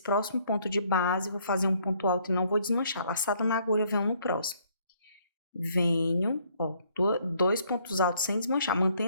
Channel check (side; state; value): both; inverted; correlation -0.66